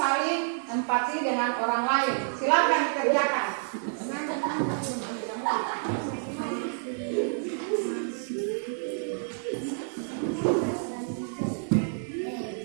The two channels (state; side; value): silent; left; digital silence